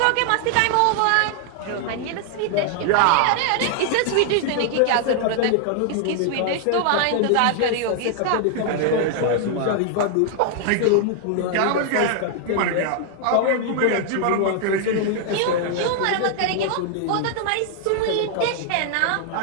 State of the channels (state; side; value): different; both; correlation 0.00